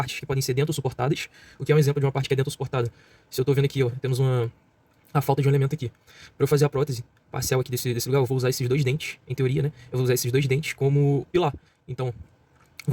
que podem ser dentro-suportadas, o que é um exemplo de uma parte que é dentro-suportada. Se eu estou vendo aqui, ó, temos a falta de um elemento aqui. Para eu fazer a prótese parcial aqui desse lugar, eu vou usar esses 2 dentes, em teoria, né? Eu vou usar esses 2 dentes como pilar. Então,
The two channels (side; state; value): both; identical; correlation 1.00